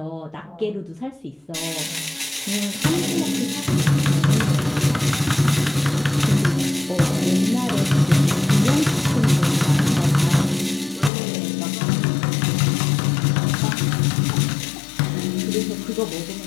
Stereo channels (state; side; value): drops out; right; at 11.1 s